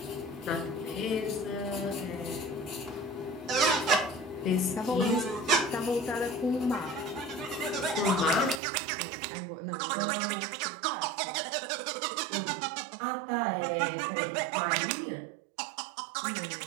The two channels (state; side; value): drops out; left; at 8.6 s